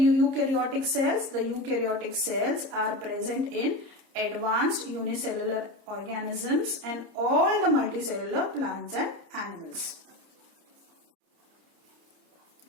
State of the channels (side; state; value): left; late; 30 ms